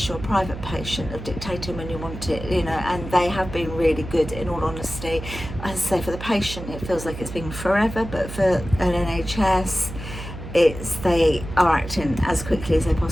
you're a private patient, of dictating when you want it, you know. And they have been really good, in all honesty. As I say, for the patient, it feels like it's been forever, but for an NHS, they are acting as quickly as they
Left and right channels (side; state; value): right; noise; hum, 10 dB below the sound